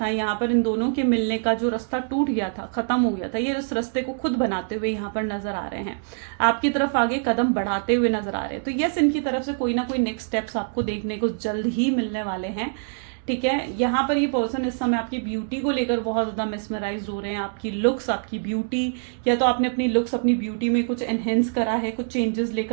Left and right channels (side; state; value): left; silent; 62 dB below the other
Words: यहाँ पर, इन दोनों के मिलने का जो रास्ता टूट गया था, खत्म हो गया था, ये उस रास्ते को खुद बनाते हुए यहाँ पर नजर आ रहे हैं, आपकी तरफ आगे कदम बढ़ाते हुए नजर आ रहे हैं। तो यस, इनकी तरफ से कोई ना कोई नेक्स्ट स्टेप्स आपको देखने को जल्द ही मिलने वाले हैं, ठीक है। यहाँ पर ये पर्सन इस समय आपकी ब्यूटी को लेकर बहुत ज़्यादा मेस्मराइज हो रहे हैं, आपकी लुक्स, आपकी ब्यूटी, या तो आपने अपनी लुक्स, अपनी ब्यूटी में कुछ एनहेंस करा है, कुछ चेंजेस